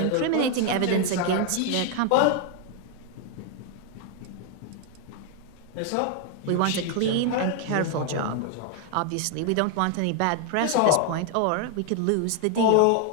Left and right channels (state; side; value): different; both; correlation 0.00